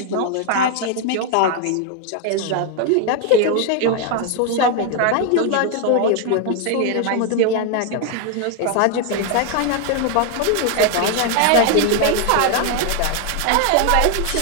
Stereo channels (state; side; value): different; both; correlation 0.01